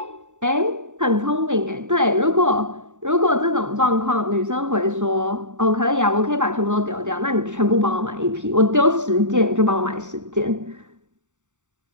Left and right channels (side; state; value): left; late; 0.85 ms